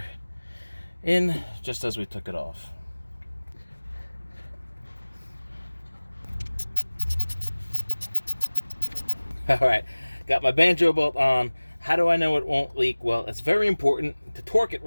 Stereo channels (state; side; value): inverted; both; correlation -1.00